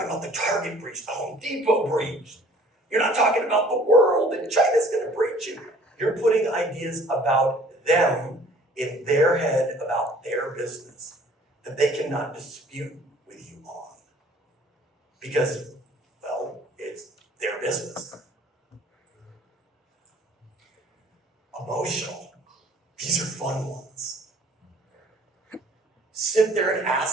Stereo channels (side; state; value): both; normal; correlation 0.53